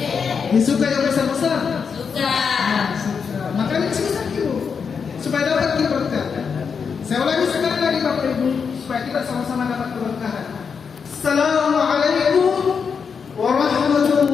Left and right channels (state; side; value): quieter; right; 6.1 dB